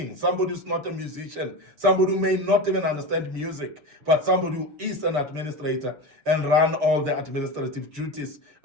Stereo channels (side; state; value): left; late; 6.9 ms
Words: somebody who's not a musician, somebody who may not even understand music, but somebody who is an administrator and run all the administrative duties